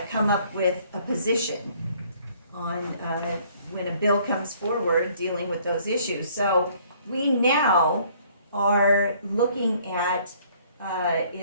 come up with a position on when a bill comes forward dealing with those issues. So we now are looking at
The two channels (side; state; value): both; inverted; correlation -0.60